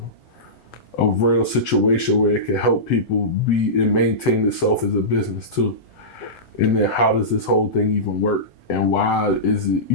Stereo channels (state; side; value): normal; both; correlation -0.18